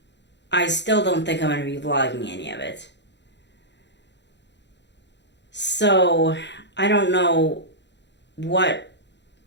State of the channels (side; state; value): right; late; 0.51 ms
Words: I still don't think I'm going to be vlogging any of it. So I don't know what,